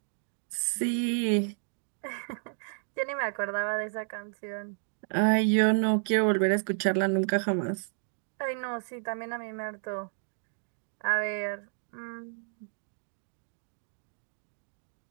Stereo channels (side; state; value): left; silent; digital silence